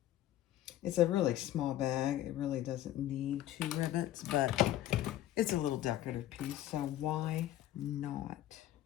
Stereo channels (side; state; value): right; quieter; 13.1 dB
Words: It's a really small bag. It really doesn't need 2 rivets, but it's a little decorative piece, so why not?